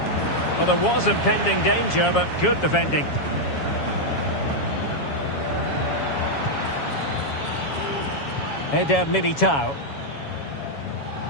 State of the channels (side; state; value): right; late; 7.2 ms